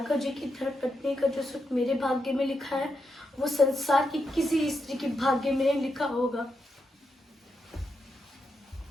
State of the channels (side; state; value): both; normal; correlation 0.84